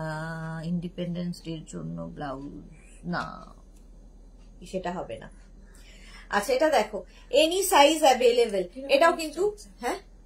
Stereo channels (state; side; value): identical; both; correlation 1.00